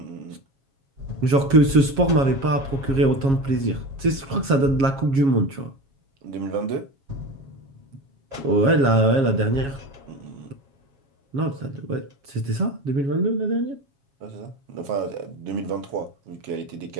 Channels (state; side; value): late; left; 7.3 ms